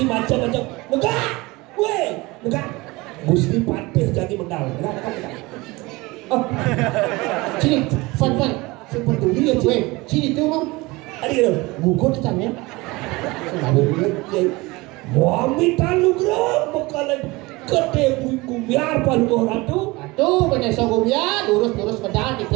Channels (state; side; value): quieter; left; 22.7 dB